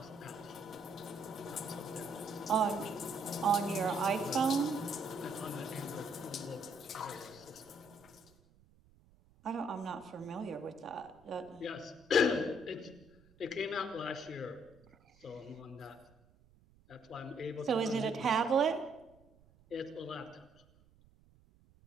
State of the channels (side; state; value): right; noise; rumble, 28 dB below the sound